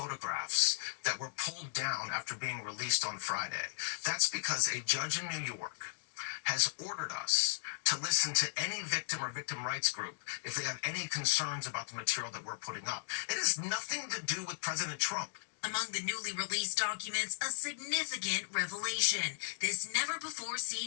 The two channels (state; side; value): silent; right; digital silence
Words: that were pulled down after being released on Friday. That's because a judge in New York has ordered us to listen to any victim or victim rights group if they have any concerns about the material that we're putting up. It has nothing to do with President Trump. Among the newly released documents, a significant revelation. This